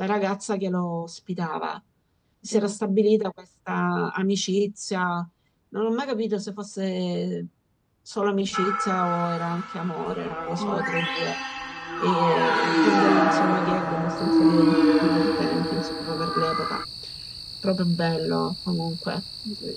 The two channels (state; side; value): identical; both; correlation 1.00